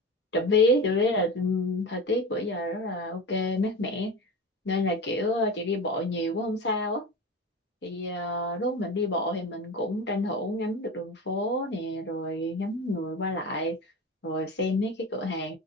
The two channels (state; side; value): normal; both; correlation 0.27